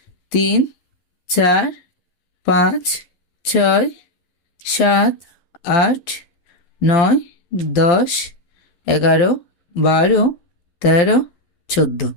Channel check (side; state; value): right; late; 12 ms